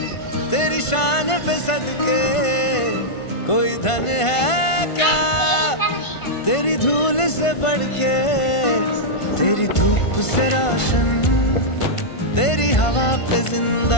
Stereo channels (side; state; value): right; late; 1.5 ms